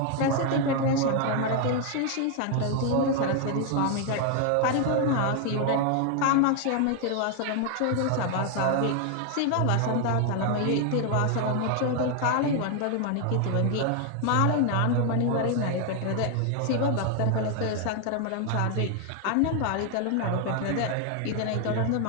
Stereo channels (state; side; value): different; both; correlation 0.00